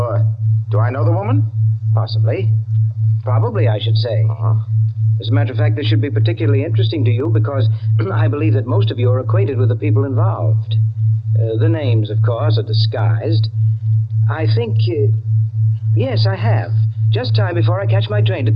Do I know the woman? Possibly. Probably, I should say. As a matter of fact, this should be particularly interesting to you because I believe that most of you are acquainted with the people involved. The names, of course, are disguised. I think... yes, I have. Just time before I catch my train to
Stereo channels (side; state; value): both; identical; correlation 1.00